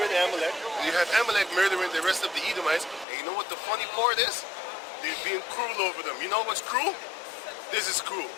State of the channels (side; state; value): right; drops out; at 3.1 s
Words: Amalek, you have Amalek murdering the rest of the Edomites, and you know what the funny part is? They're being cruel over them. You know what's cruel? This is cruel.